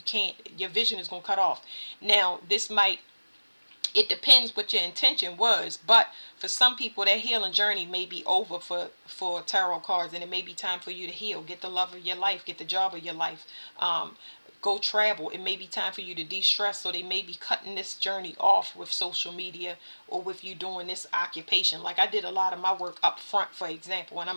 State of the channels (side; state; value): both; inverted; correlation -1.00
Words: can't, your vision is going to cut off. Now, it depends what your intention was, but for some people that healing journey may be over for tarot cards, and it may be time for you to heal, get the love of your life, get the job of your life, go travel. It may be time for you to de-stress, so they may be cutting this journey off with social media or with you doing this occupation. Like I did a lot of my work up front, for example, and